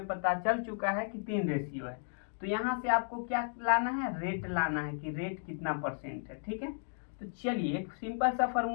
पता चल चुका है कि 3 रेशियो है। तो यहाँ से आपको क्या लाना है, रेट लाना है कि रेट कितना परसेंट है। ठीक है, तो चलिए एक सिंपल सा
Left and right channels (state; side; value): silent; right; digital silence